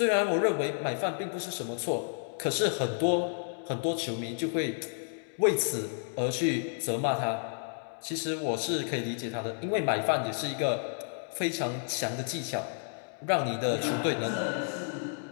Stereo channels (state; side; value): silent; right; digital silence